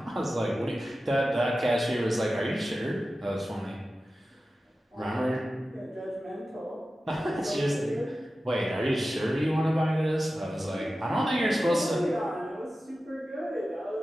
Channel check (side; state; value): both; normal; correlation 0.94